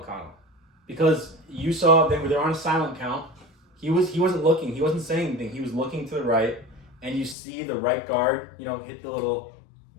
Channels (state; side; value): drops out; right; at 7.4 s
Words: because you saw they're on a silent count. He wasn't looking. He wasn't saying anything. He was looking to the right, and you see the right guard, hit the little,